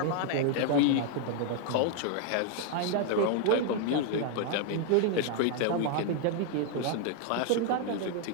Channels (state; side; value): different; both; correlation 0.00